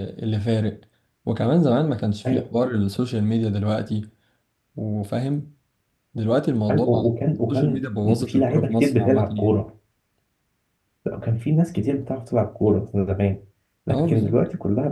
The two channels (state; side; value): identical; both; correlation 1.00